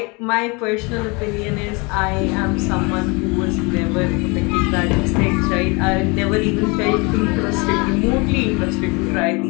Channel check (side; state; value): right; quieter; 28.5 dB